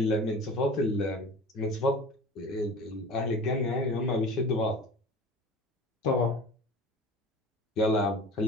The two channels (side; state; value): both; normal; correlation 0.39